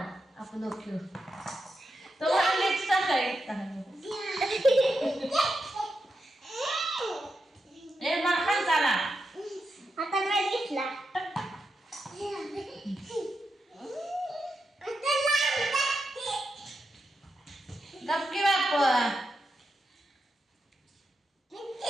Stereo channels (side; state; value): both; normal; correlation 0.86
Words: आपण ओके तो आलेच सकाळी ए माखन झाला आता काय घेतला गप्पी बाप